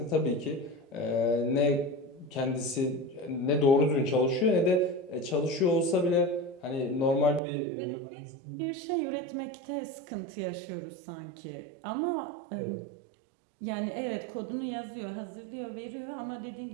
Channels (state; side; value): drops out; left; at 7.4 s